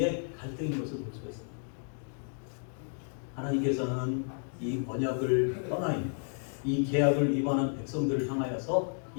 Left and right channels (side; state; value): right; silent; 56 dB below the other